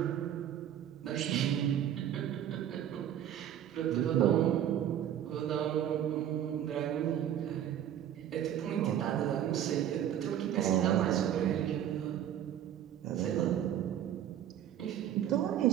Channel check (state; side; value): quieter; left; 10.6 dB